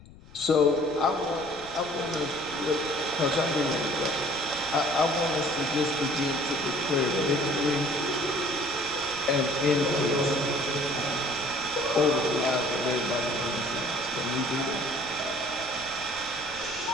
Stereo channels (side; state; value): left; noise; rumble, 21 dB below the sound